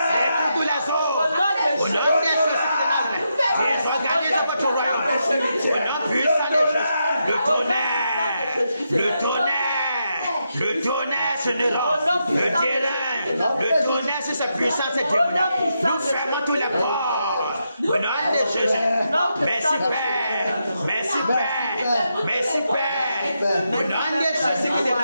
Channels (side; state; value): both; inverted; correlation -0.83